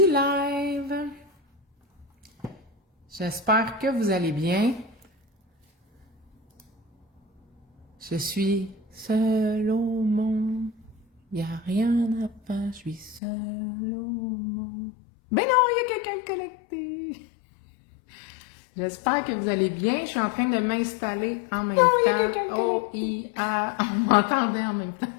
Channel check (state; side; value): drops out; right; at 13.2 s